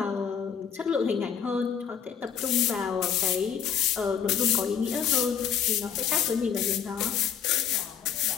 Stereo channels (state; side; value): quieter; right; 7.8 dB